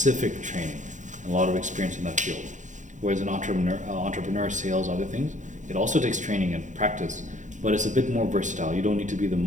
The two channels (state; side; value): late; left; 0.36 ms